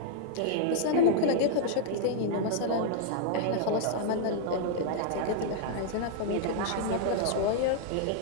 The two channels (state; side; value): different; both; correlation -0.01